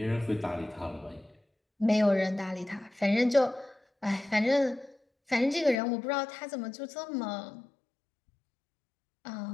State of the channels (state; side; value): drops out; right; at 5.8 s